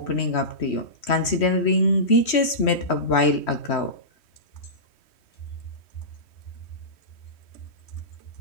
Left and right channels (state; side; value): late; right; 3.1 ms